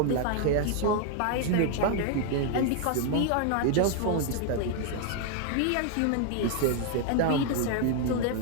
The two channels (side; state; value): both; different; correlation 0.00